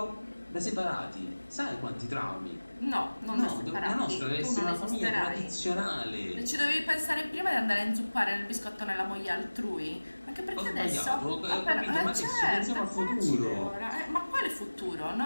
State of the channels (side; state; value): both; inverted; correlation -1.00